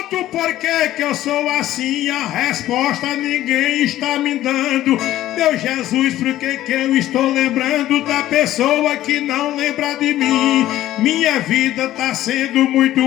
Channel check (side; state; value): right; quieter; 14.0 dB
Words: Por que eu sou assim? A resposta ninguém está me dando. Meu Jesus, por que eu estou lembrando da pessoa que não lembra de mim? Minha vida tá sendo muito